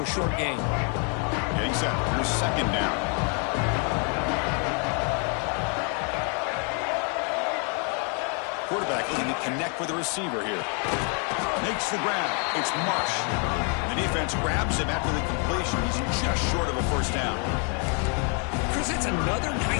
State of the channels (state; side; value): quieter; right; 38.6 dB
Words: a short gain. Getting set, here's 2nd down. Quarterback looking to connect with the receiver here. Makes the grab. It's Marsh. The defense grabs him after the completion. He's just short of a 1st down. Chris, it's another